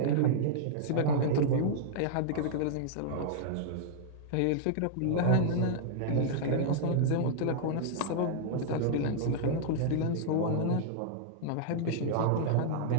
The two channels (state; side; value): different; both; correlation -0.02